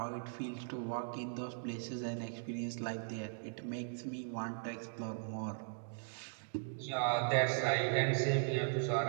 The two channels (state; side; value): silent; left; digital silence